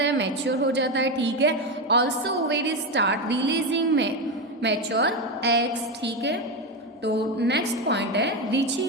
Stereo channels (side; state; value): both; normal; correlation 0.13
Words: है? मैच्योर हो जाता है. ठीक है, also ovaries start releasing mature eggs. ठीक है, तो नेक्स्ट पॉइंट है